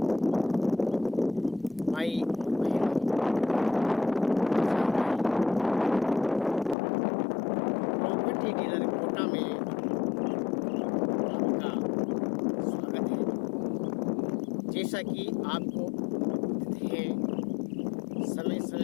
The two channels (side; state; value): right; drops out; at 6.8 s